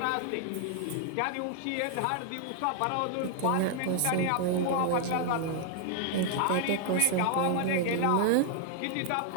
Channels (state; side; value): different; both; correlation 0.00